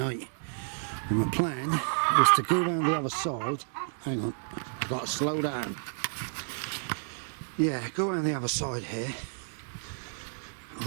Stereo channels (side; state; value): left; silent; digital silence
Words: And my plan was to go around the other side. Hang on, I've got to slow down. Yeah, go around the other side here.